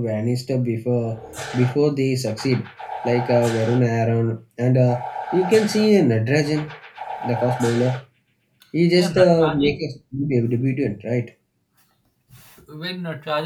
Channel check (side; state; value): both; identical; correlation 1.00